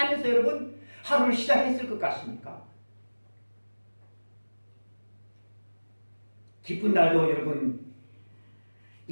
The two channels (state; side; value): inverted; both; correlation -1.00